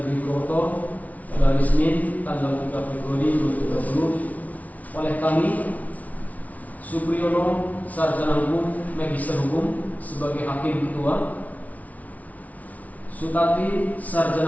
Purwokerto pada hari Senin tanggal 3 Februari 2020 oleh kami, Supriyono Sarjana Hukum Magister Hukum sebagai Hakim Ketua, Sutati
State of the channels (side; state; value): right; late; 0.071 ms